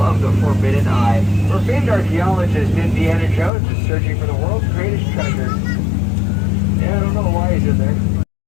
the Forbidden Eye, where famed archaeologist Indiana Jones is searching for the world's greatest treasure. Yeah, I don't know why he's in there.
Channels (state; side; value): drops out; right; at 3.5 s